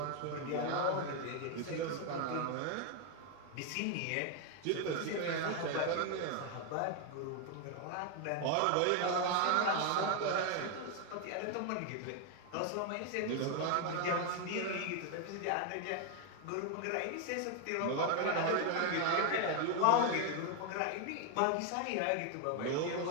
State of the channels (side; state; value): both; different; correlation 0.01